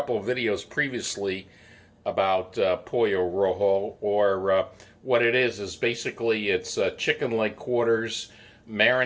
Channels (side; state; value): both; identical; correlation 1.00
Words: of videos previously about Pollo Rojo, or what it is basically it's chicken leg quarters